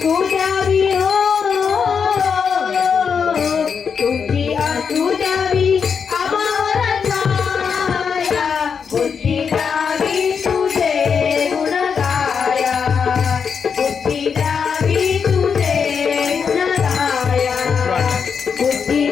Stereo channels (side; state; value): right; quieter; 6.3 dB